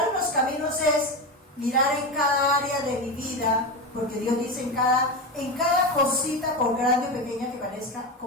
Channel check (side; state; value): both; normal; correlation 0.18